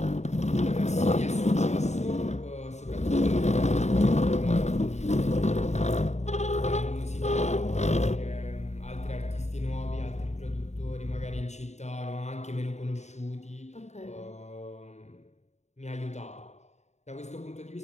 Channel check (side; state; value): right; late; 0.33 ms